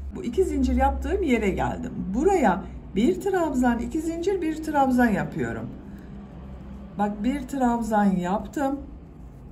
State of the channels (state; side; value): identical; both; correlation 1.00